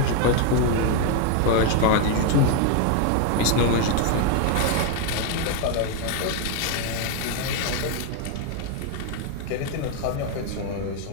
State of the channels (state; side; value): different; both; correlation 0.01